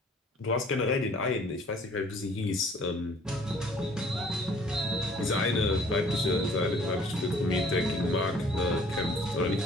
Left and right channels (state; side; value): normal; both; correlation 0.56